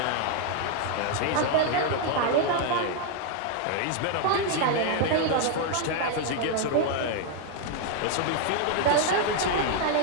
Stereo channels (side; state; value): both; different; correlation 0.00